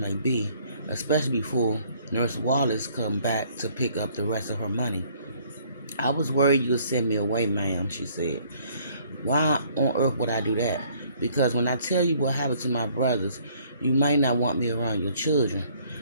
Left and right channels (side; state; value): both; inverted; correlation -0.61